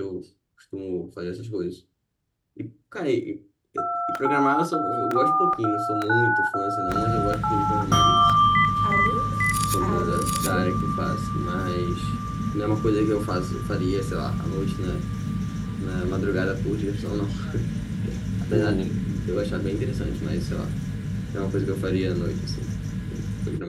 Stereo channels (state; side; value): identical; both; correlation 1.00